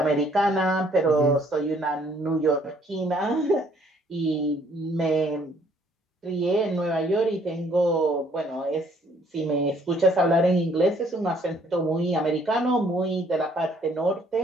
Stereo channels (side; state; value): both; normal; correlation 0.63